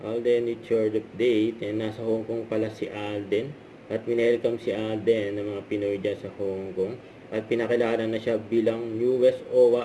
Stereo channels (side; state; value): both; identical; correlation 1.00